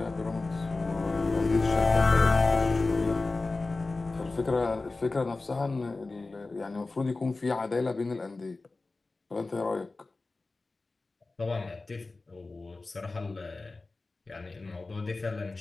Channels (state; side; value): quieter; right; 3.5 dB